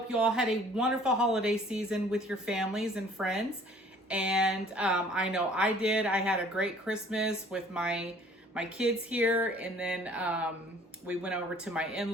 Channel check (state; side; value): normal; both; correlation 0.54